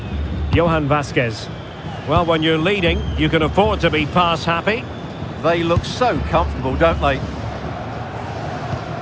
Johan Vasquez. Well, when you're leading, you can afford to be pass happy. They look so comfortable, don't they?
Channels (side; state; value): both; identical; correlation 1.00